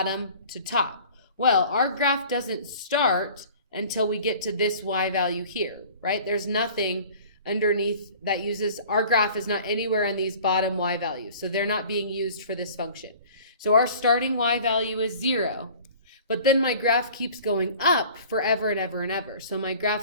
to top. Well, our graph doesn't start until we get to this y value here, right? There's nothing underneath that uses, our graph is not anywhere in these bottom y values. So they're not being used for this function. So our starting y value is 0. But then my graph keeps going up forever and ever and ever. So my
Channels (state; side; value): inverted; both; correlation -0.46